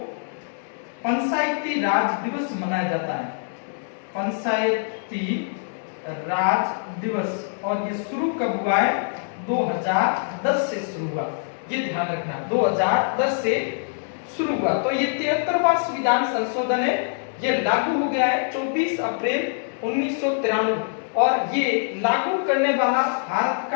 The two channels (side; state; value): right; silent; digital silence